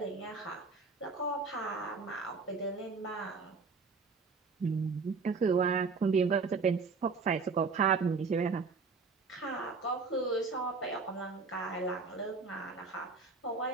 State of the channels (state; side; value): quieter; left; 4.6 dB